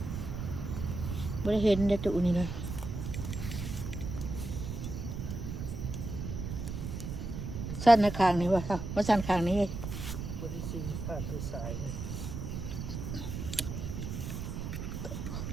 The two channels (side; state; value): right; noise; rumble, 5 dB below the sound